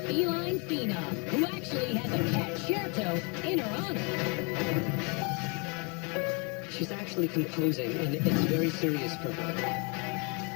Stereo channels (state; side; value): quieter; right; 33.0 dB